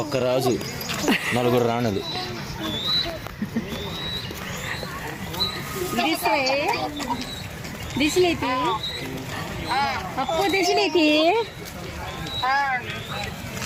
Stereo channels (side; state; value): both; identical; correlation 1.00